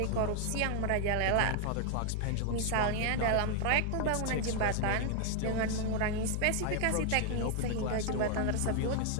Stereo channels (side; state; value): both; different; correlation 0.00